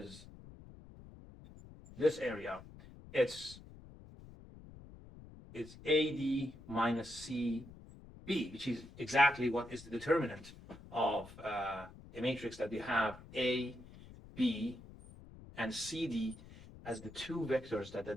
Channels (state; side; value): noise; left; rumble, 18 dB below the sound